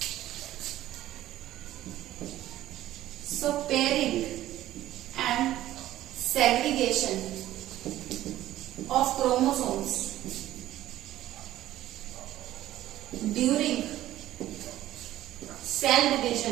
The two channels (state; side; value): quieter; left; 14.0 dB